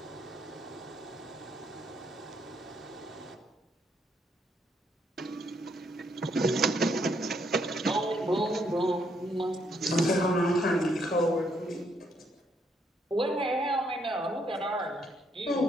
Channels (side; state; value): both; normal; correlation 0.73